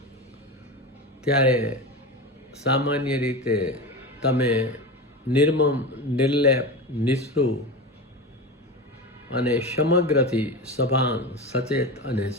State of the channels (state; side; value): normal; both; correlation 0.24